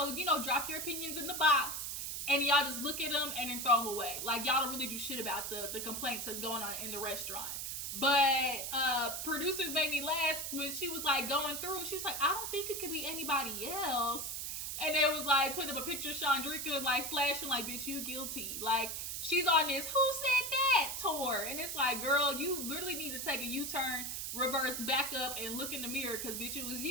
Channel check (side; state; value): right; noise; hiss, 4 dB below the sound